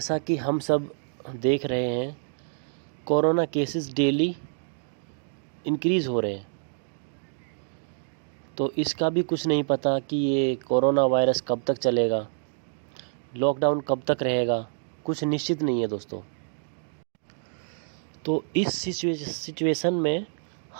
कि हम सब देख रहे हैं, कोरोना केसेस डेली इंक्रीज़ हो रहे हैं। तो इसका भी कुछ नहीं पता कि ये कोरोना वायरस कब तक चलेगा, लॉकडाउन कब तक रहेगा, कुछ निश्चित नहीं है दोस्तों। तो इस सिचुएशन में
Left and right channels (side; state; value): left; silent; digital silence